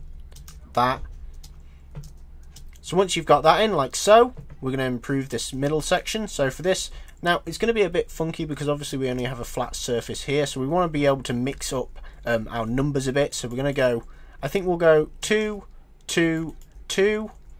that. So once you've got that in like so, we're going to improve this middle section. So for this, now it's going to be a bit funky because obviously we only have a flat surface here, so we want to be able to mix up our numbers a bit. So we're going to go, I think we'll go 2, 2, 2,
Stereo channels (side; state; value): both; identical; correlation 1.00